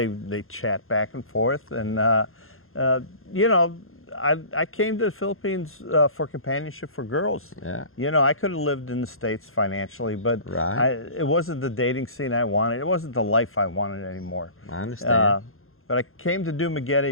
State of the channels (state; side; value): late; right; 0.61 ms